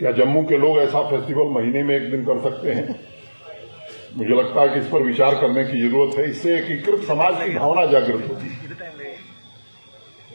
जम्मू के लोग ऐसा फेस्टिवल महीने में एक दिन कर सकते हैं? मुझे लगता है कि इस पर विचार करने की जरूरत है। इससे एकीकृत समाज की भावना जागृत होती है।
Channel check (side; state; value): both; inverted; correlation -1.00